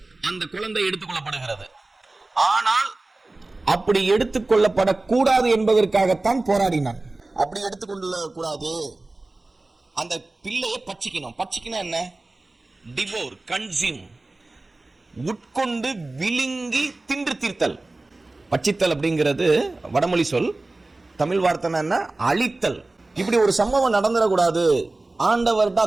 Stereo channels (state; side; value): quieter; left; 3.0 dB